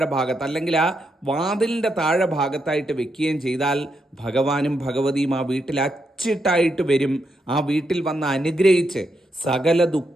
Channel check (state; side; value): normal; both; correlation 0.81